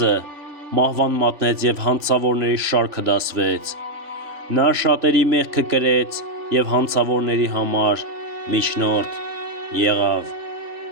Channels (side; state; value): left; late; 3.0 ms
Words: մահվան մատնեց և հանցավորների շարքը դասվեց, նա շատերի մեղքը կրեց և հանցավորների համար միջնորդ եղավ,